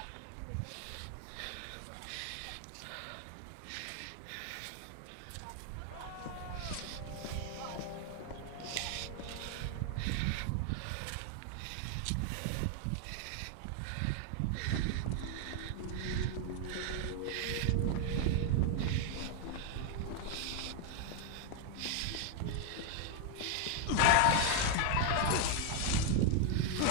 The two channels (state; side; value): different; both; correlation 0.01